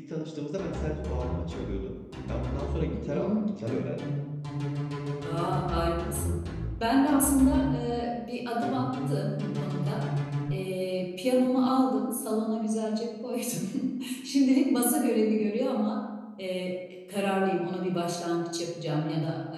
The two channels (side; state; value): both; identical; correlation 1.00